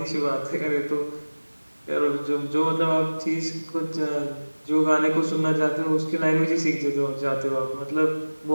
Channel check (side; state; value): both; inverted; correlation -1.00